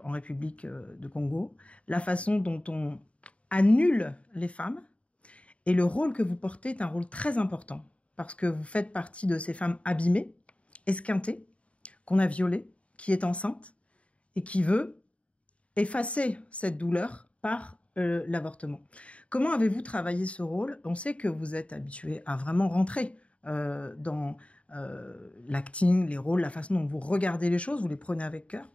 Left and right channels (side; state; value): right; late; 0.063 ms